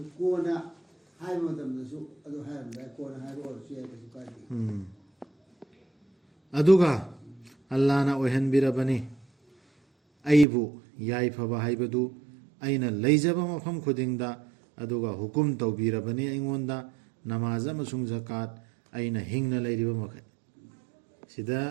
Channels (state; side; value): drops out; left; at 10.5 s